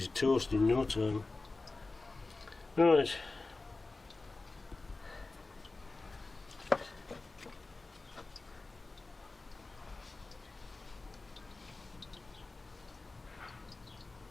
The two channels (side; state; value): right; quieter; 3.4 dB